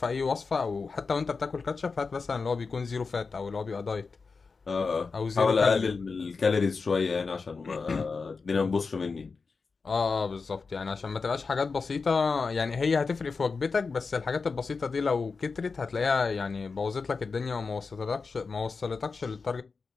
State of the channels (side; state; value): right; quieter; 4.7 dB